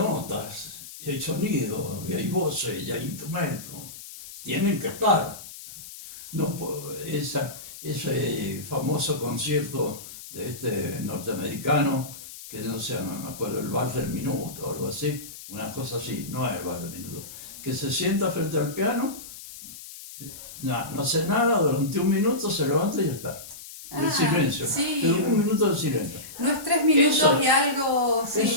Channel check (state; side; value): noise; left; hiss, 14 dB below the sound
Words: y hay sonido, y hay voces, y hay instrumentos, tienen que estar. No, ese famoso concierto de este norteamericano, que no sé, me acuerdo, el bar del minuto o algo así, una cosa así, no es el bar del minuto, que se sienta frente al piano, no hace nada, durante un minuto se levanta y ya está. El silencio, sí. pero un minuto de silencio. No es 3 minutos Eso- y algo. Sí.